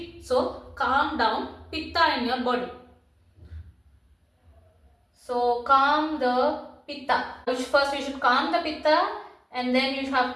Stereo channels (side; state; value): both; identical; correlation 1.00